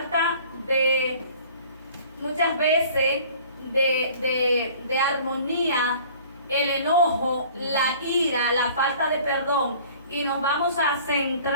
muchas veces de armonía el enojo, la ira, la falta de perdón. Y nos vamos a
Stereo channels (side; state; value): both; inverted; correlation -0.49